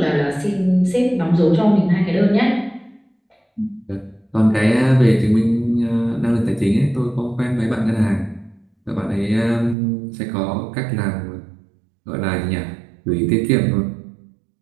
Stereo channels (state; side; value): drops out; left; at 9.8 s